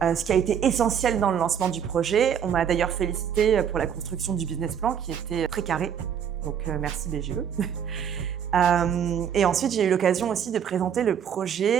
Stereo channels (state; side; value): quieter; left; 8.3 dB